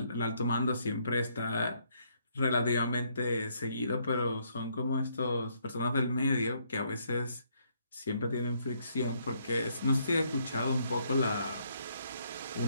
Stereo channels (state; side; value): inverted; both; correlation -0.71